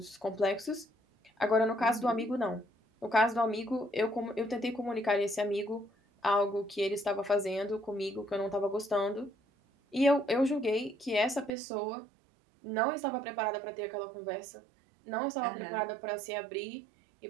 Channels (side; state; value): left; drops out; at 11.5 s